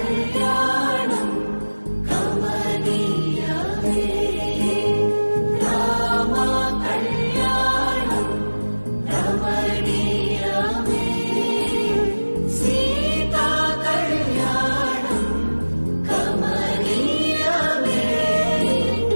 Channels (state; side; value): inverted; both; correlation -1.00